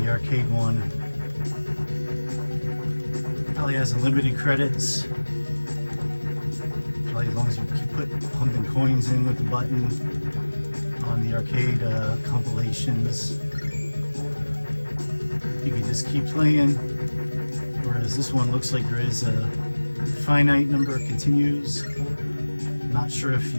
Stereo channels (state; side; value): inverted; both; correlation -1.00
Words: the arcade one probably has unlimited credits. Probably as long as you keep pumping coins in with the button on the arcade compilations, you can just keep playing. Whereas this one looks like there is a finite number of continues. Not sure if